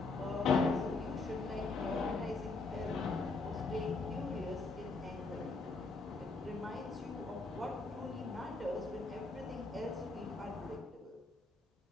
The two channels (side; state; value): right; quieter; 3.7 dB